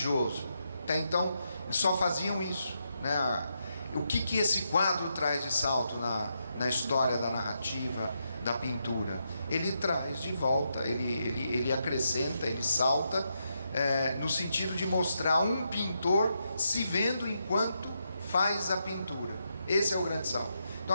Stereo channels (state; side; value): inverted; both; correlation -0.82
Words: Até então eles só faziam isso, né? O que esse quadro traz de salto na história da narrativa, da pintura? Ele traz de volta, ele acrescenta, ele salta, no sentido de mostrar um pintor se vendo enquanto faz a pintura. Esse é o grande salto. Então